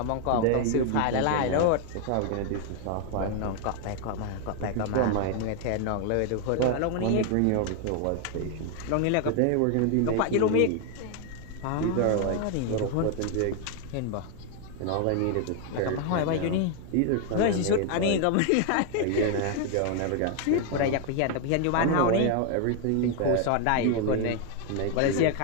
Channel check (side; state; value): both; different; correlation 0.00